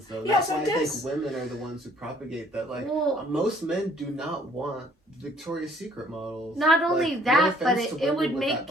though. Yeah, That's so why it I does. think women are the ones who propagate that. Like Well, most men do not want Victoria's Secret models. not only Like, no that, but offense to it women would with make that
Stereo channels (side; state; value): both; normal; correlation 0.61